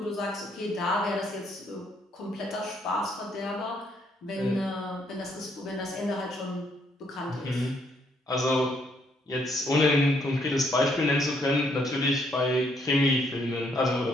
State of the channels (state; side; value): normal; both; correlation 0.71